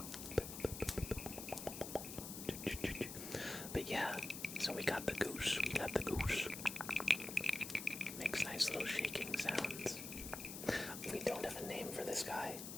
But yeah, so we got the goose. Makes nice little shaking sounds. We don't have a name for this guy.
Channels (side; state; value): left; noise; hiss, 8 dB below the sound